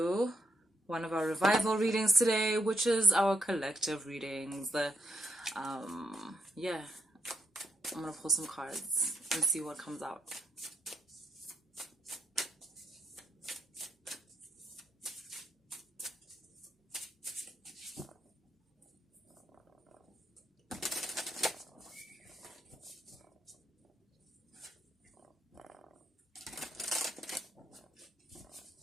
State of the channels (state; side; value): normal; both; correlation 0.77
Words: one of our revival readings today, which is our collective readings. Yeah, I'm gonna pull some cards and see what comes out.